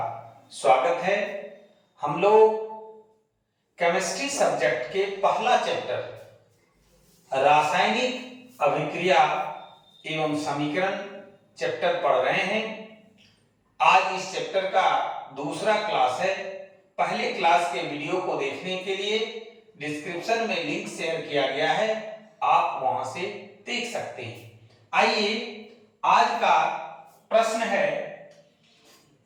स्वागत है। हम लोग केमिस्ट्री सब्जेक्ट के पहला चैप्टर रासायनिक अभिक्रिया एवं समीकरण चैप्टर पढ़ रहे हैं। आज इस चैप्टर का दूसरा क्लास है। पहले क्लास के वीडियो को देखने के लिए डिस्क्रिप्शन में लिंक शेयर किया गया है, आप वहां से देख सकते हैं। आइए, आज का प्रश्न है,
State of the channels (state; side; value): identical; both; correlation 1.00